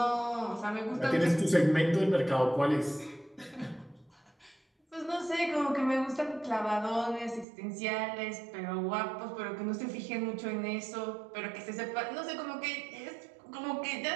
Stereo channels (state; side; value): drops out; left; at 7.5 s